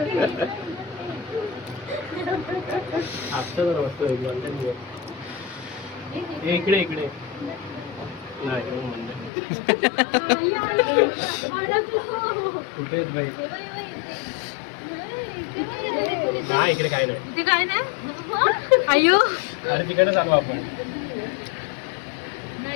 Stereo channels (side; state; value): right; drops out; at 9.3 s